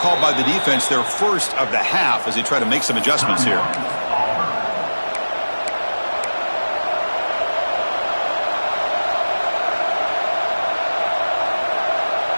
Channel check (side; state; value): both; inverted; correlation -1.00